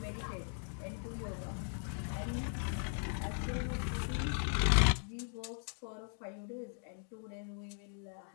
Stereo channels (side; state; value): right; silent; 52 dB below the other